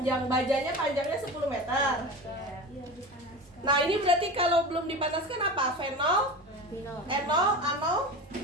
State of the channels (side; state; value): both; normal; correlation 0.30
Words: Bajanya panjangnya 10 meter. Iya, dipanaskan. Nah, ini berarti kalau belum dipanaskan apa? Fenol? Enol? Anol?